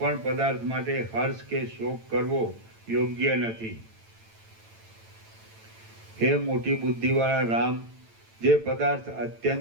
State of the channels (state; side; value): late; left; 8.9 ms